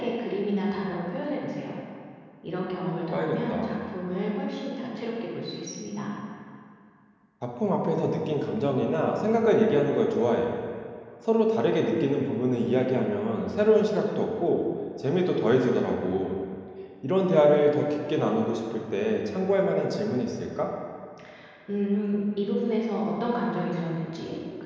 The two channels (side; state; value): both; identical; correlation 1.00